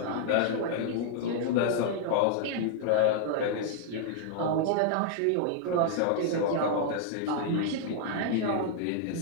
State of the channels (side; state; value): both; different; correlation -0.01